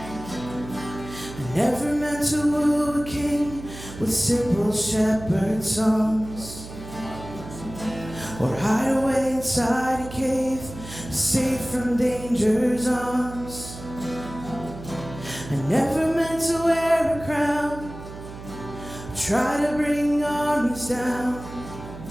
I never meant to woo a king with simple shepherd songs, or hide away inside a cave, safe from danger's arms. I never meant to wear a crown, try to bring armies down.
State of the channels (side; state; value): right; noise; hum, 13 dB below the sound